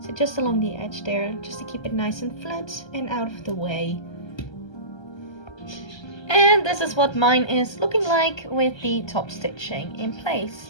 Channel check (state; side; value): late; right; 1.3 ms